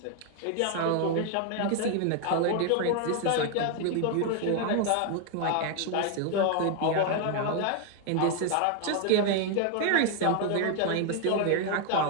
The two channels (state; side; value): different; both; correlation 0.00